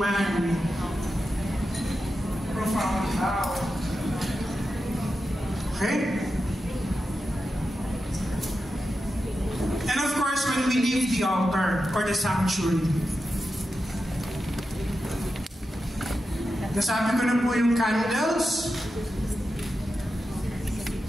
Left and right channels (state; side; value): normal; both; correlation 0.90